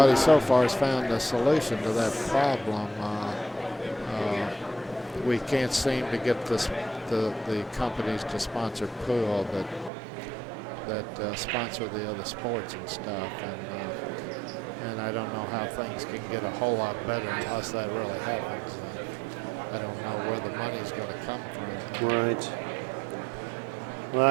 so far has found a solution to that problem. We can't seem to get the companies to sponsor pool that sponsor the other sports and stuff, and I don't know how things can get a whole lot better unless that really happens. I don't know where the money's going to come from. Right. Well,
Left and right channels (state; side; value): drops out; left; at 9.9 s